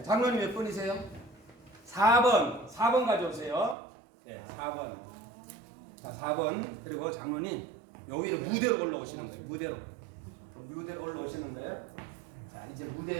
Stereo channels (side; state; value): left; drops out; at 3.8 s